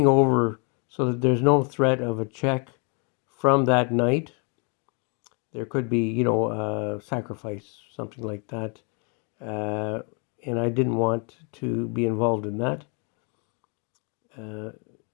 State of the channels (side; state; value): right; quieter; 36.3 dB